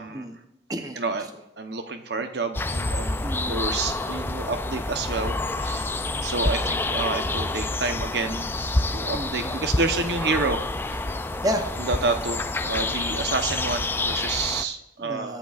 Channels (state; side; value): normal; both; correlation 0.27